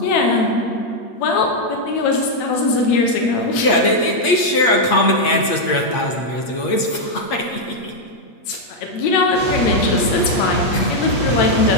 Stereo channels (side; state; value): right; late; 8.5 ms